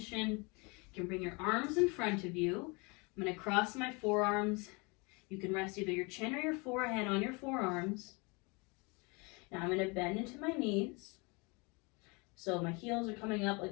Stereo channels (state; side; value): quieter; right; 29.2 dB